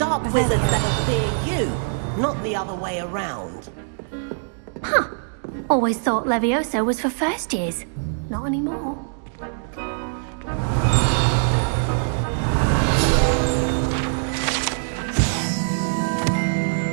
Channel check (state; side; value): silent; left; digital silence